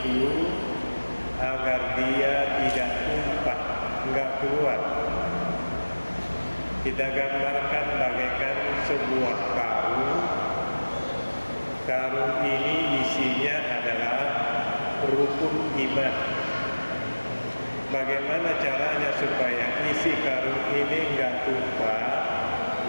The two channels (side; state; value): both; inverted; correlation -1.00